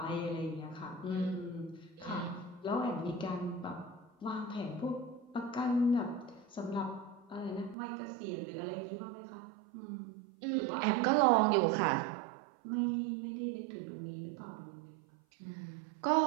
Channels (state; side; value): drops out; left; at 7.8 s